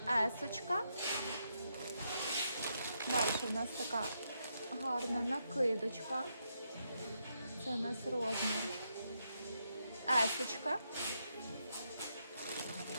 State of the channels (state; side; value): inverted; both; correlation -0.80